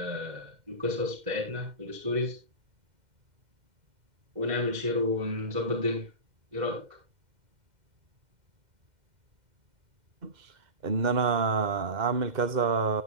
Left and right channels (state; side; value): late; left; 2.1 ms